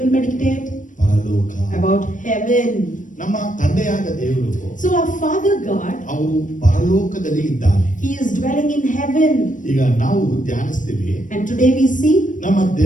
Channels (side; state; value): right; late; 0.37 ms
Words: will meditate ಪರಲೋಕ, about heaven. ನಮ್ಮ ತಂದೆಯಾದ ದೇವರು So our Father God, ಅವರು ಪರಲೋಕದಲ್ಲಿ ಇದ್ದಾನೆ. He is dwelling in heaven. ಈಗ ನಾವು ಧ್ಯಾನಿಸ್ತೀವಿ And today we see ನಮ್ಮ